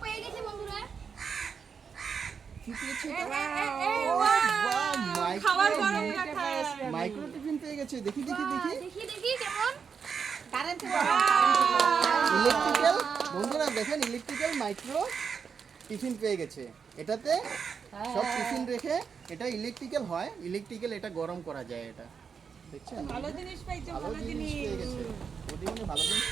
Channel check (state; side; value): quieter; left; 6.3 dB